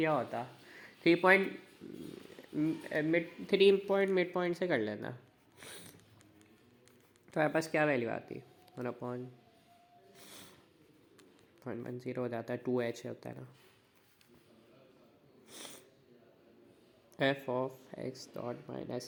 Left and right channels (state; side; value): identical; both; correlation 1.00